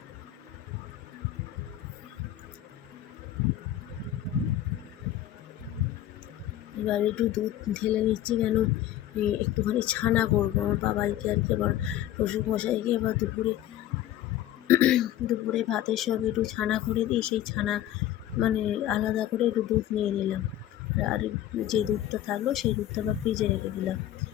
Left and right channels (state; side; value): quieter; right; 12.6 dB